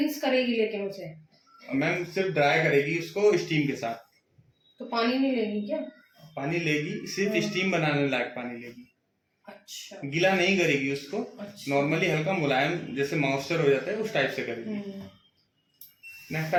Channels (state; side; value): identical; both; correlation 1.00